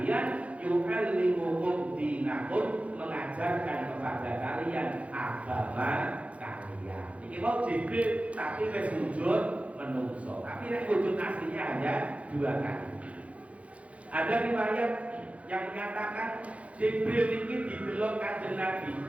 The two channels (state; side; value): late; left; 0.064 ms